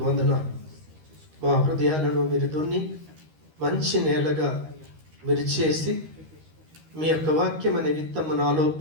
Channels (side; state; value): left; late; 13 ms